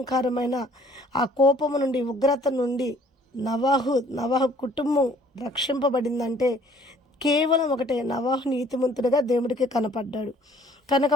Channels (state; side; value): normal; both; correlation 0.57